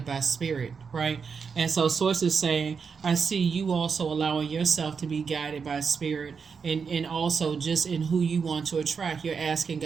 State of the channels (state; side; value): quieter; left; 5.8 dB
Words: by spirit, right? And so source is saying, I see you also allowing yourself to be guided by spirit, and also just in who you want to attract. You're asking